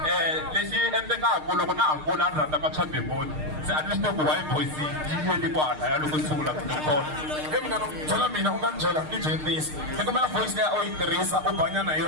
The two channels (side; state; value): left; late; 6.5 ms